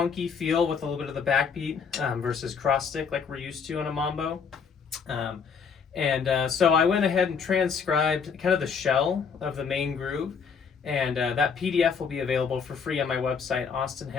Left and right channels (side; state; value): right; quieter; 6.1 dB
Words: feel with a little bit of the backbeat versus cross stick like we're used to on a mambo. So I went ahead and transcribed kind of the shell of the main groove, and that PDF will be available for free on my website,